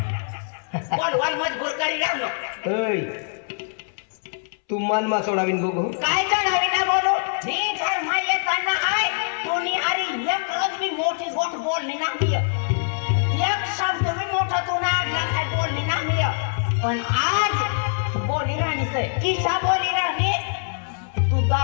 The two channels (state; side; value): silent; right; 63 dB below the other